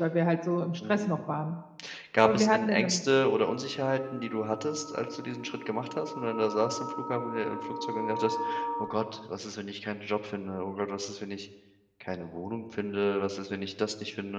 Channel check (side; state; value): both; identical; correlation 1.00